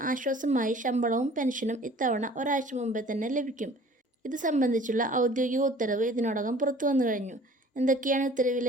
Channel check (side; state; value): both; normal; correlation 0.49